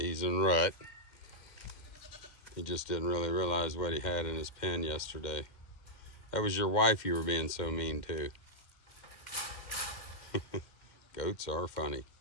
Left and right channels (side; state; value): right; late; 2.1 ms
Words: he's in rut. He just didn't really realize what he had in his pen yesterday. That was your wife you were being so mean to. Goats are funny.